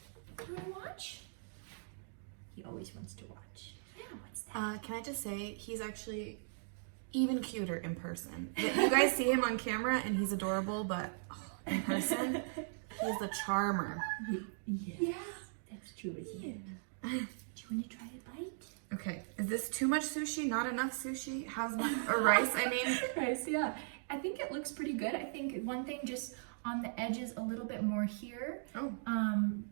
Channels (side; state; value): left; silent; digital silence